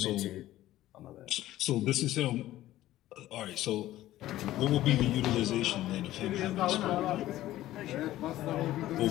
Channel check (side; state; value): right; quieter; 14.8 dB